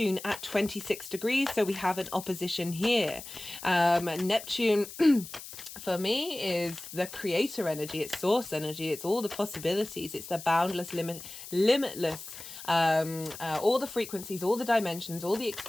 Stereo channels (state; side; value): noise; left; hiss, 13 dB below the sound